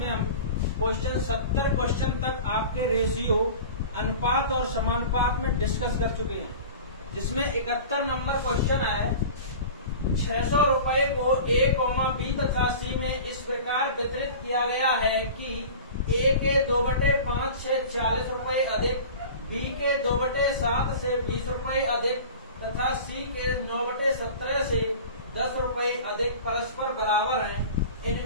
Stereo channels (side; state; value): both; inverted; correlation -0.37